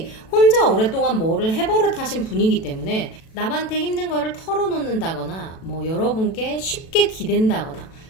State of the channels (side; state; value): right; late; 37 ms